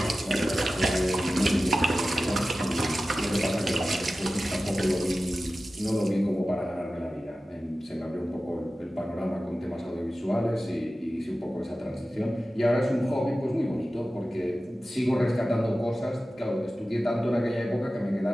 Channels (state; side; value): normal; both; correlation 0.95